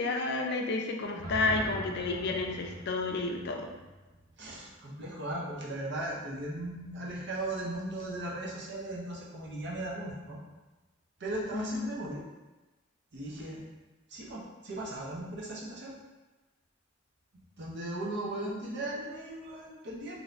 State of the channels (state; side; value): normal; both; correlation 0.25